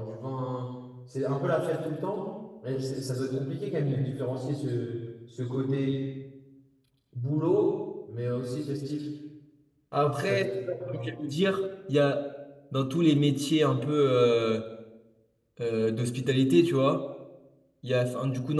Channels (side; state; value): both; identical; correlation 1.00